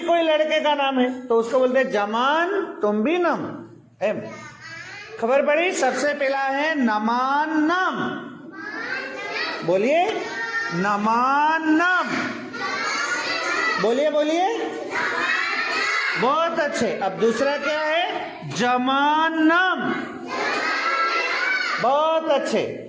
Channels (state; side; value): identical; both; correlation 1.00